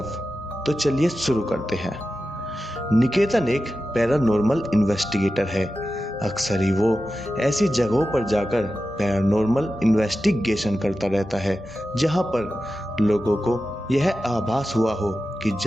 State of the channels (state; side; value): normal; both; correlation 0.92